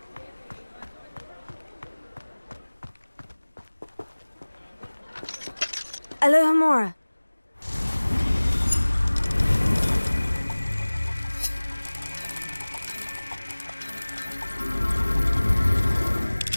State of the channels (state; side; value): inverted; both; correlation -1.00